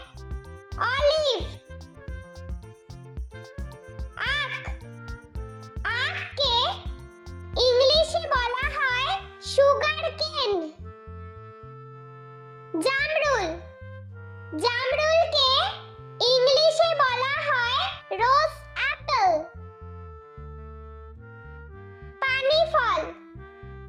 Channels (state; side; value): identical; both; correlation 1.00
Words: অলিভ। আখ, আখকে ইংলিশে বলা হয় সুগার কেন। জামরুল, জামরুলকে ইংলিশে বলা হয় রোজ অ্যাপল। পানি ফল,